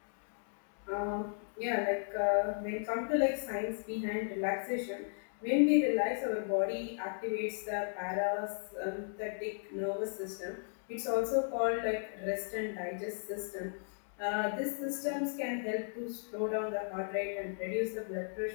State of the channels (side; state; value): right; silent; digital silence